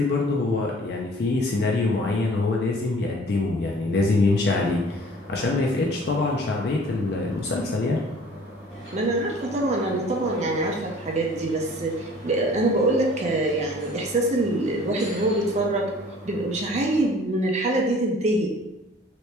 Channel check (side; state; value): both; normal; correlation 0.50